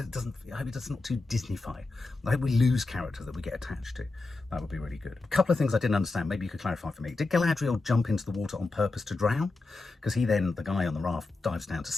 I hope it's not too Disney-fied. I hope we lose characters that we get attached to. That would be really good. A couple of things I didn't understand. Maybe you could clarify for me. Did Galadriel jump into the water on purpose to drown? Because the guy on the raft, dives down to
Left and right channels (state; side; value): quieter; right; 3.4 dB